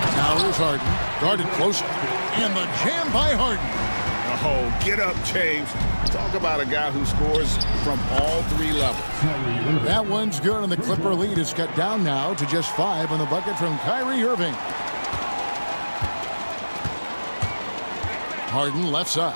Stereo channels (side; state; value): both; inverted; correlation -1.00